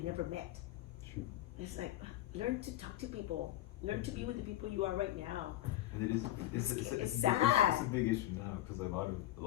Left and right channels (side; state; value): right; quieter; 14.1 dB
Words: never met. Shoot. It's like, learn to talk to people. Learn to be with the people you are right now. And it is, it's, It's a big- sad. it's a big issue now because a